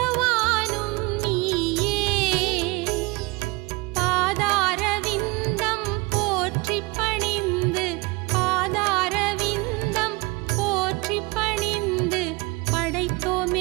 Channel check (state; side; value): quieter; left; 25.4 dB